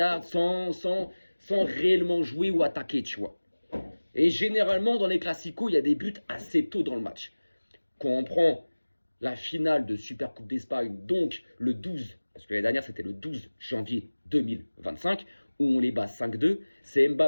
sans réellement jouer ou attaquer, tu vois. Et généralement, dans les Classicos, il y a des buts assez tôt dans le match. Quand on prend la finale de Super Coupe d'Espagne, donc le 12, parce que l'année dernière, c'était le 12 janvier 2025, où on les bat 5-2, c'est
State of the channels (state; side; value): inverted; both; correlation -1.00